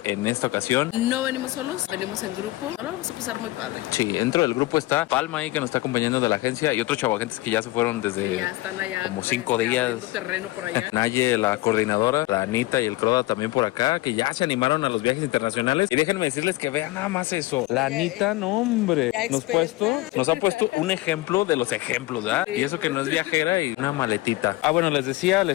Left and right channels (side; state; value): right; quieter; 19.2 dB